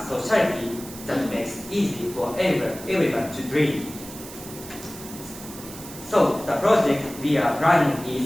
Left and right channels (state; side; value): noise; right; hiss, 14 dB below the sound